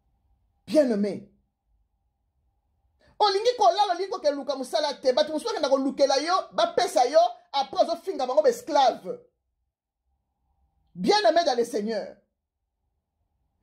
Bien-aimé. Olingi kolala olingi ke luka musala te batu musuka na kolukela yo ba pesa yo après zo finga bango esclave. Bien-aimé dans le Seigneur.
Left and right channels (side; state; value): both; identical; correlation 1.00